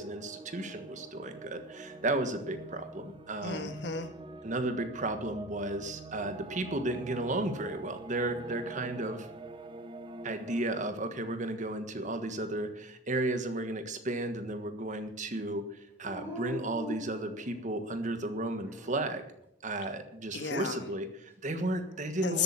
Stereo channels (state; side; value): normal; both; correlation 0.34